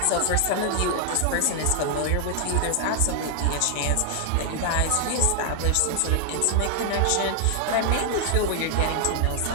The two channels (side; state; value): both; different; correlation 0.00